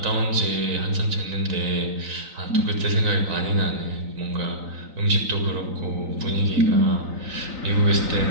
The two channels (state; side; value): late; left; 3.9 ms